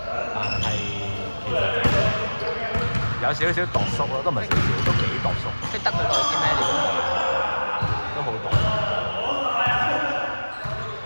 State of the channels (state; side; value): inverted; both; correlation -1.00